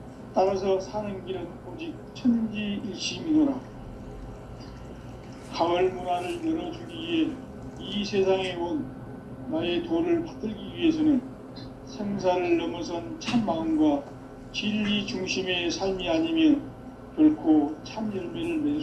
따라서 사는 길은 오직 천지일심이노라. 가을 문화를 열어주기 위해 이 세상에 온 나의 도를 받들기 위해서는 생사를 넘어선 참 마음과 진리 중심의 삶이 아니면 결코 참 열매를 맺을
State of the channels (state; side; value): identical; both; correlation 1.00